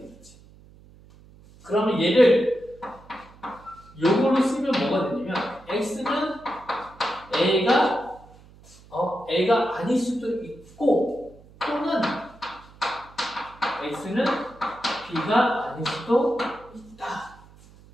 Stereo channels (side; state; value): right; noise; hum, 24 dB below the sound